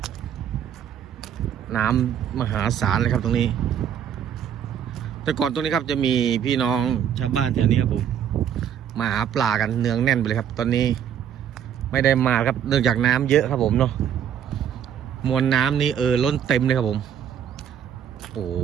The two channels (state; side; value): quieter; left; 9.2 dB